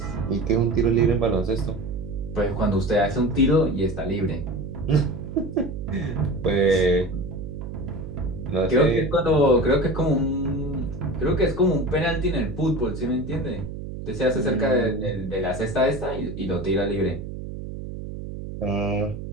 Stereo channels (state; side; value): noise; right; hum, 8 dB below the sound